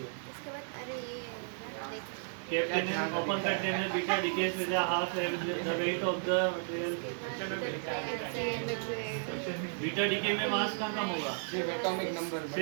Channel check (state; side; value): silent; left; digital silence